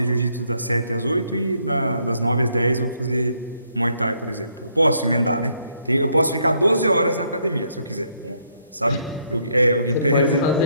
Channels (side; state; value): both; inverted; correlation -0.71